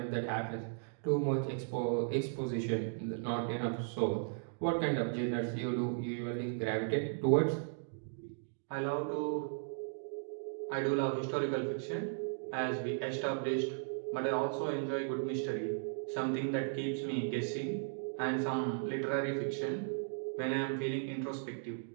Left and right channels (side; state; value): left; silent; digital silence